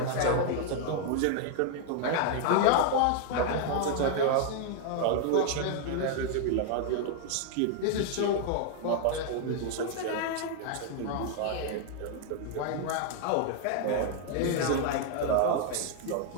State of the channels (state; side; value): different; both; correlation 0.00